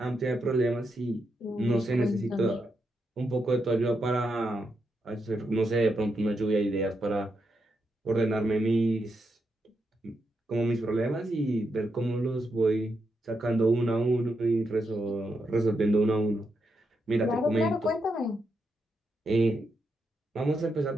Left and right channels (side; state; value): both; normal; correlation 0.83